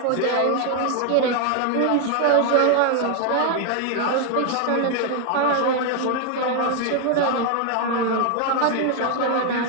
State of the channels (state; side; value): different; both; correlation 0.00